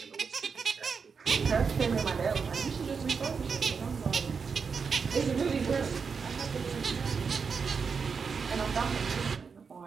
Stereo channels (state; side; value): quieter; left; 5.6 dB